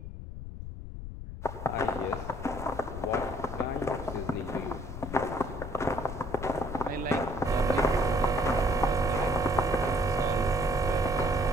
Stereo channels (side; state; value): left; noise; rumble, 9 dB below the sound